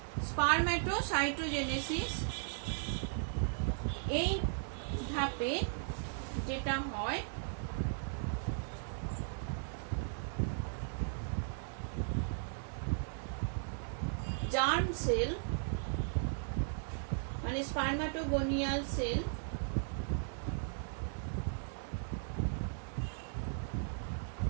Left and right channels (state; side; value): silent; left; digital silence